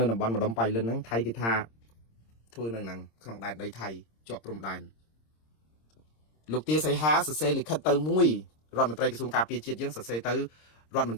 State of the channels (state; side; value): late; right; 26 ms